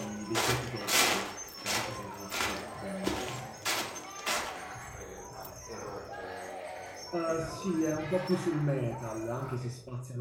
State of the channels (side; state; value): both; identical; correlation 1.00